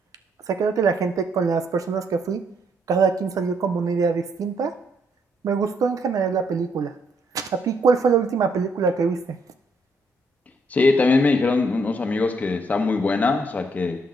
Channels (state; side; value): normal; both; correlation 0.72